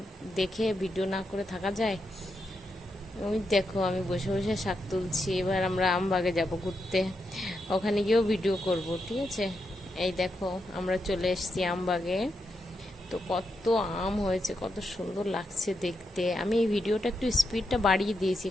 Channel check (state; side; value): normal; both; correlation 0.84